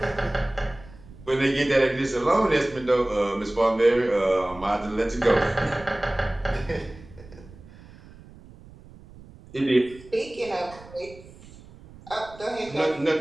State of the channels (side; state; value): right; noise; rumble, 20 dB below the sound